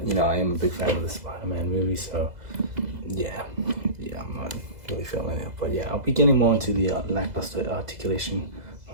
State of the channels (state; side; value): late; left; 2.0 ms